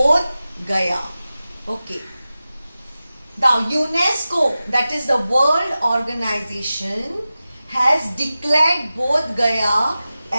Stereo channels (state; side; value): inverted; both; correlation -0.95